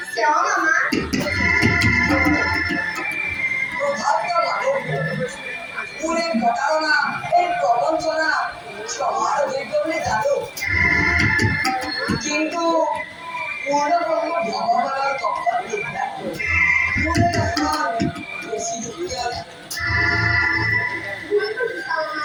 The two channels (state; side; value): identical; both; correlation 1.00